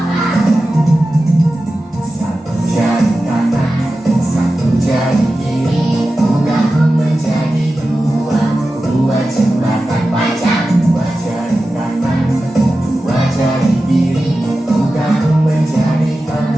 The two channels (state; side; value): normal; both; correlation 0.94